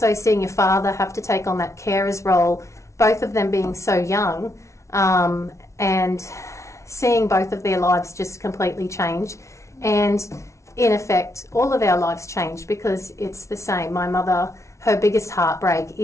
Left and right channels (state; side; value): late; right; 0.14 ms